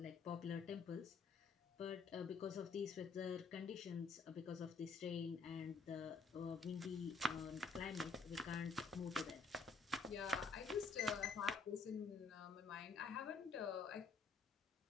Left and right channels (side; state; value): right; quieter; 4.5 dB